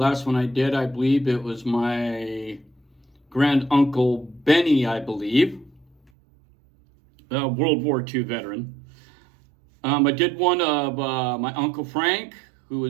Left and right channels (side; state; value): left; drops out; at 6.1 s